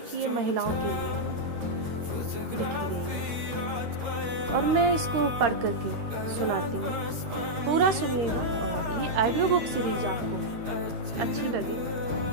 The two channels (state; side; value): late; left; 13 ms